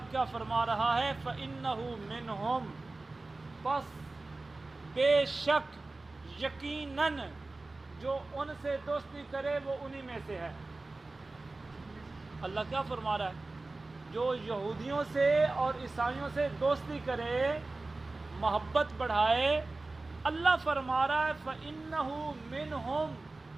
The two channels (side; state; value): left; quieter; 3.2 dB